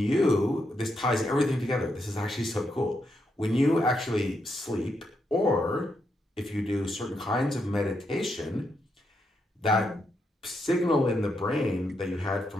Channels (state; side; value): normal; both; correlation 0.81